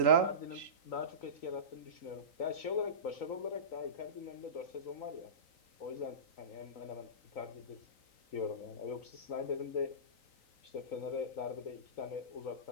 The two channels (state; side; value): late; right; 3.9 ms